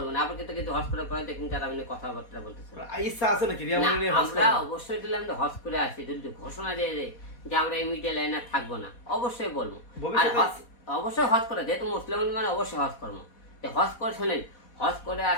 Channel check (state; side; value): late; right; 4.2 ms